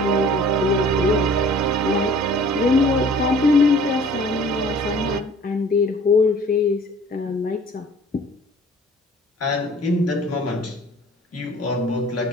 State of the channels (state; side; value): normal; both; correlation 0.50